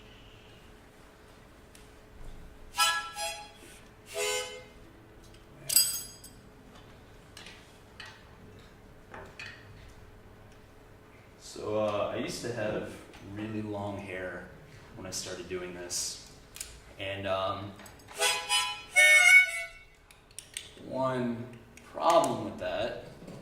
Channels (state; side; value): identical; both; correlation 1.00